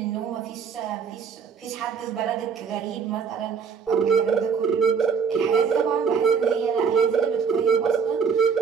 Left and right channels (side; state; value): left; quieter; 6.3 dB